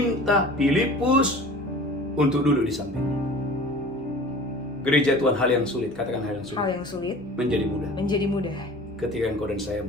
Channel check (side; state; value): both; normal; correlation 0.42